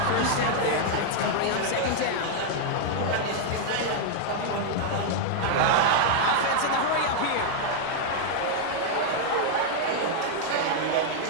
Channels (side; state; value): both; different; correlation -0.01